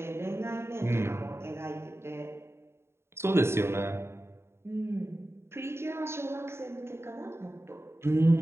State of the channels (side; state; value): left; late; 0.12 ms